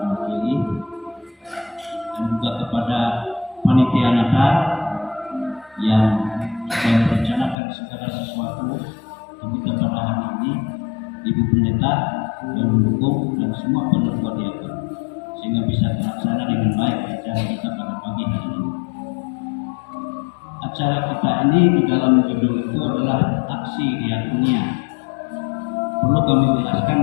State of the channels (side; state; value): right; drops out; at 7.6 s